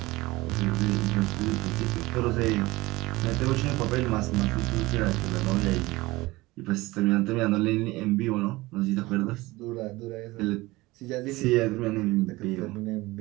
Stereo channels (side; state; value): left; quieter; 20.4 dB